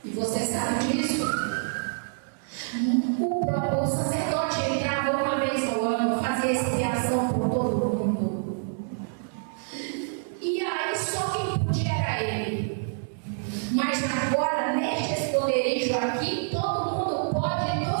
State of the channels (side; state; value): left; silent; digital silence